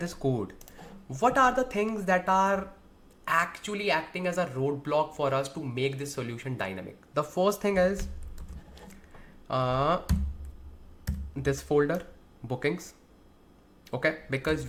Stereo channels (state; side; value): identical; both; correlation 1.00